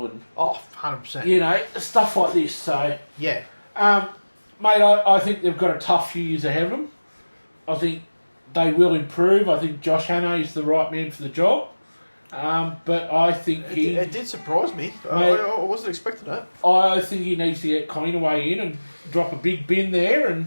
and 100%. Stuff like this. So mate, I think they've got a tough few years ahead of them. I think they will improve. I think Josh Hannay is the right man for the job. But I think it did surprise me. I wasn't expecting that. I think he needs to get Cleanaway in and drop a big bin there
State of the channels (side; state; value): both; inverted; correlation -1.00